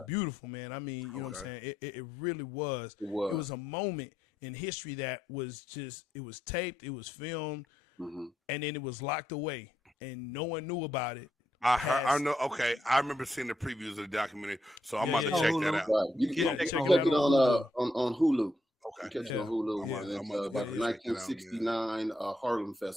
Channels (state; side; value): normal; both; correlation 0.79